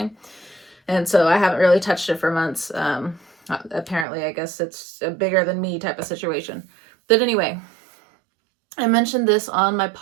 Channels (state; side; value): drops out; left; at 4.0 s